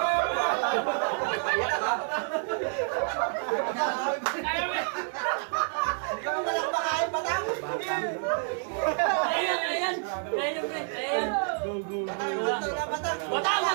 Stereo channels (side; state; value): left; silent; 59 dB below the other